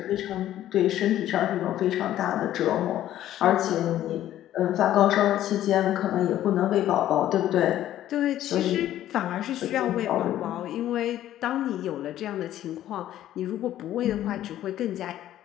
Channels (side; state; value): right; quieter; 12.7 dB